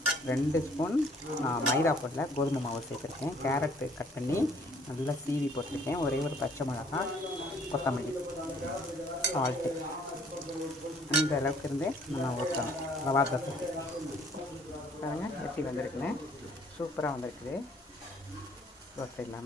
2 ஸ்பூன் மைதா போடல கோதுமை மாவு சேர்த்துருக்கேன். கேரட்டு கட் பண்ணி நல்லா சீவி போட்டிருக்கேன். ஒரே ஒரு பச்சை மிளகாய், கொத்தமல்லி, சால்ட்டு. இந்த அளவுக்கு இருந்து நம்ம ஊற்றணும் ரவா தோசை. பாருங்க எப்படி வந்திருக்குன்னு. சூப்பராக வந்திருக்குது தோசை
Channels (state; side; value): normal; both; correlation 0.59